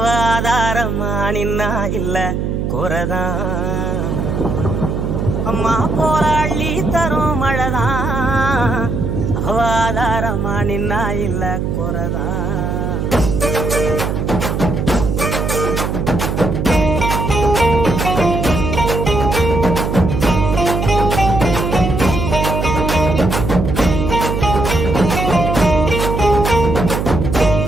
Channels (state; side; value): noise; right; hum, 1 dB below the sound